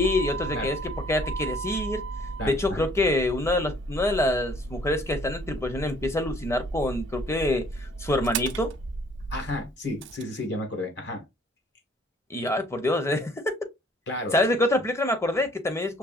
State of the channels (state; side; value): normal; both; correlation 0.58